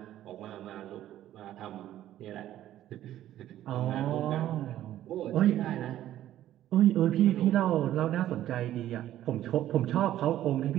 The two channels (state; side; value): quieter; left; 12.7 dB